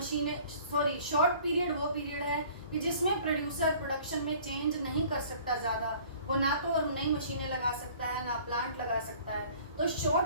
सॉरी शॉर्ट पीरियड वो पीरियड है कि जिसमें प्रोड्यूसर प्रोडक्शन में चेंज नहीं कर सकता ज़्यादा, वो ना तो नई मशीनें लगा सकता है ना प्लांट लगा सकता है, तो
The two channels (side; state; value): both; inverted; correlation -0.51